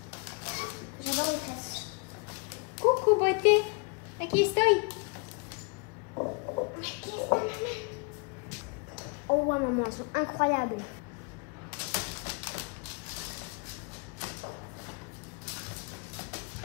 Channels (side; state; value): right; quieter; 33.1 dB